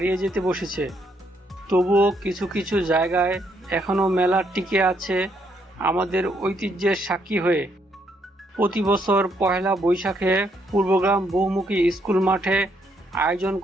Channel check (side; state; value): both; normal; correlation 0.73